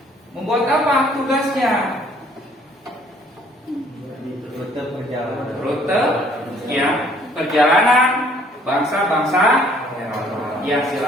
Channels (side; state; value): both; normal; correlation 0.60